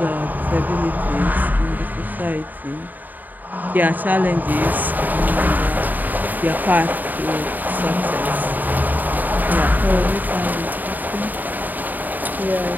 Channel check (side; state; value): left; late; 0.086 ms